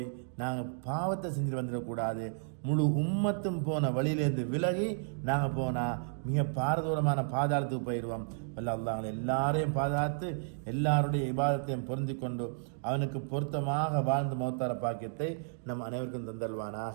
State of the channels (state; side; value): silent; left; digital silence